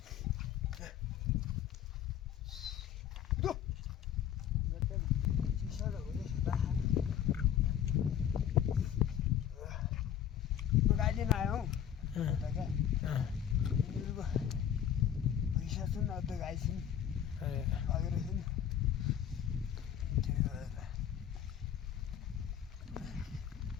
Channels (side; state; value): right; quieter; 9.7 dB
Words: गाइदिन आयो पैसा छन् अझ गाई छन् अगेर छन्